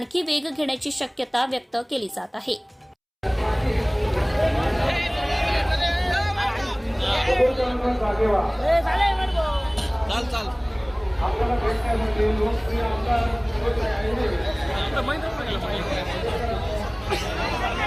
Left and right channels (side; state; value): both; identical; correlation 1.00